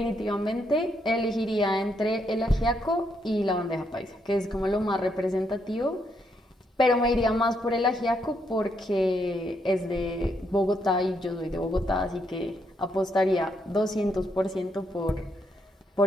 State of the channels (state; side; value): normal; both; correlation 0.76